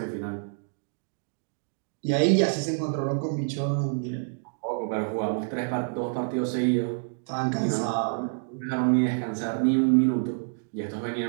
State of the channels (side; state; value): left; silent; digital silence